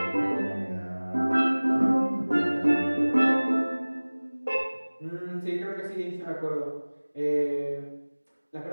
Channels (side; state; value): both; inverted; correlation -1.00